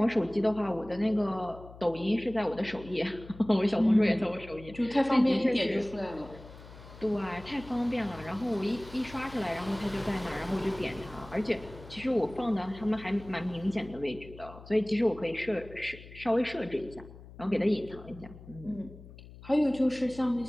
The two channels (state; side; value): noise; left; hum, 18 dB below the sound